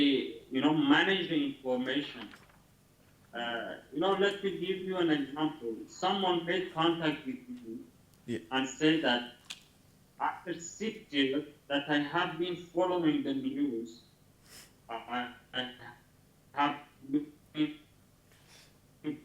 manage the information. Let me give you an example. Someone made contact with me and said that after 6 years that I have been following the news, I have been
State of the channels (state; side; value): identical; both; correlation 1.00